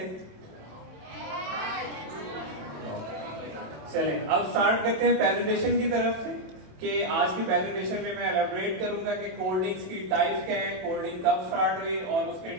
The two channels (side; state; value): left; late; 27 ms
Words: चलें, अब स्टार्ट करते हैं प्रेजेंटेशन की तरफ से कि आज की प्रेजेंटेशन में मैं एलैबोरेट करूंगा कि कोल्ड ड्रिंक्स की टाइप्स क्या हैं, कोल्ड ड्रिंक कब स्टार्ट हुई और उसके